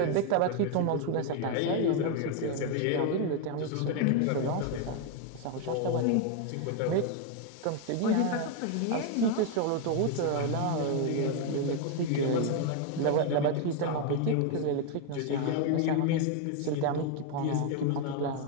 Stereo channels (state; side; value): different; both; correlation 0.01